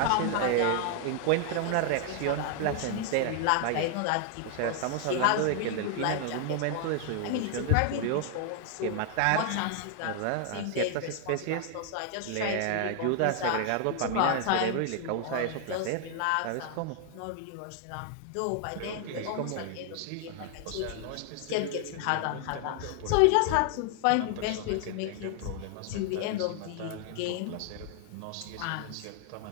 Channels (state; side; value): different; both; correlation 0.00